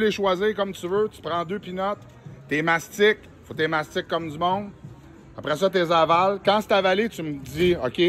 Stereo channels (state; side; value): identical; both; correlation 1.00